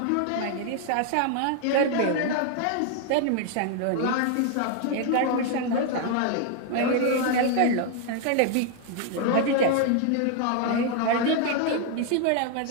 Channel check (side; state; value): both; different; correlation 0.00